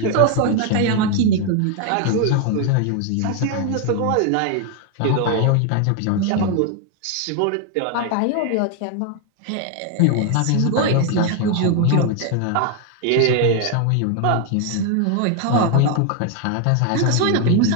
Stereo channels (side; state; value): both; different; correlation 0.01